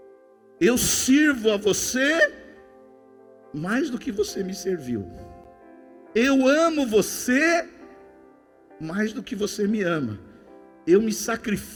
Eu sirvo a você mais do que você me serviu. Eu amo você mais do que você me ama. Eu me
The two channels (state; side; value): identical; both; correlation 1.00